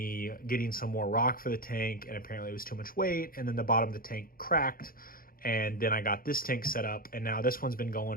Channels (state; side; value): late; right; 0.42 ms